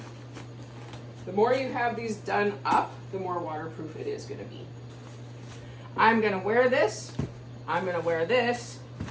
The more you have these done up, the more waterproof it is going to be. I'm going to wear this. I'm going to wear this.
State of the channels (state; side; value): identical; both; correlation 1.00